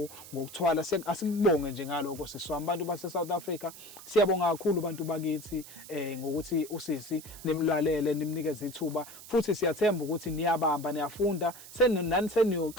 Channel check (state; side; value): noise; right; hiss, 16 dB below the sound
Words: ngokuthwala asikubonge nje ngaloko siswami abantu base South Africa siyabonga kakhulu abantu bakithi ngokuthi usisi nimlalele nimnikeze ithuba futhi siyathemba ukuthi niyabamba niyafunda nani